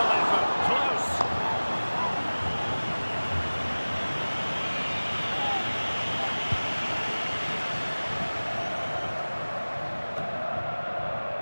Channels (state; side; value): inverted; both; correlation -1.00